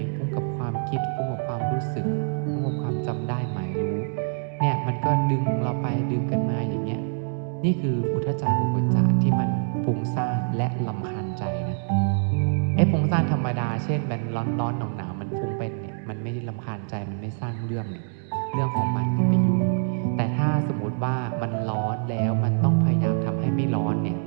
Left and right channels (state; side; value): silent; left; 61 dB below the other